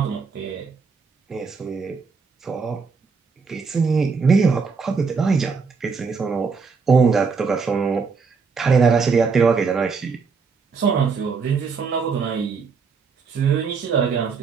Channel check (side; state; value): left; quieter; 5.1 dB